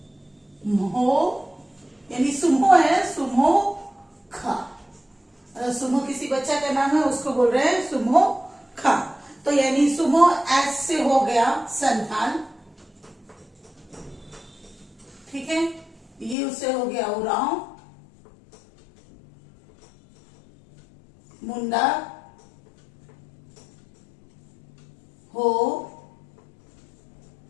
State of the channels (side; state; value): right; drops out; at 16.4 s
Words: यानी सुमो है, सुमो खा। सुमो किसी बच्चा का नाम है, उसको बोल रहे हैं सुमो खा। तो यानी सुमो एस से हो गया संतान, ठीक है। ये उससे हो गया उराव, मुंडा, हो